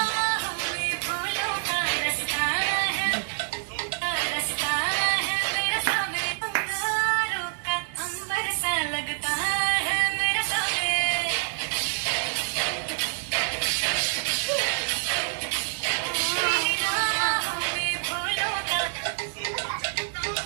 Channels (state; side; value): silent; left; digital silence